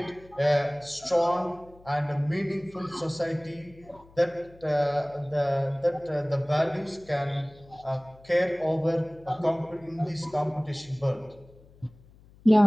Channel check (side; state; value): left; noise; hum, 25 dB below the sound